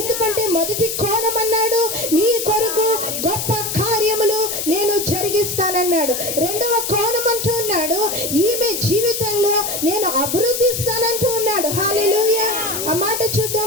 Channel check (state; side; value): noise; left; hiss, 3 dB below the sound